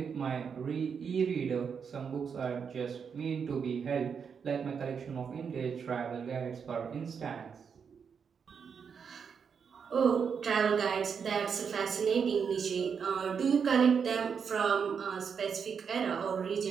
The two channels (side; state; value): left; quieter; 6.5 dB